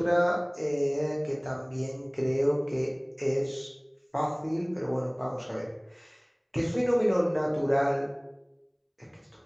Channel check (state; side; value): identical; both; correlation 1.00